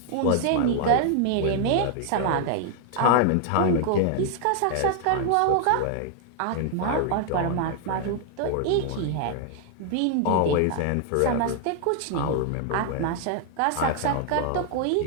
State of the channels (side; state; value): both; different; correlation 0.00